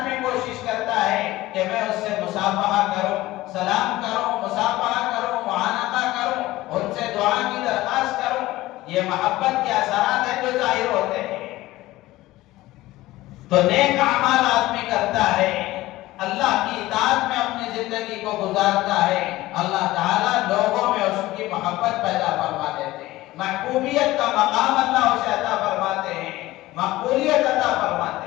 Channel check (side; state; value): right; quieter; 17.5 dB